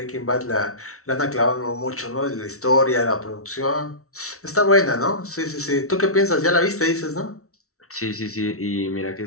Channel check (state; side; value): late; right; 0.64 ms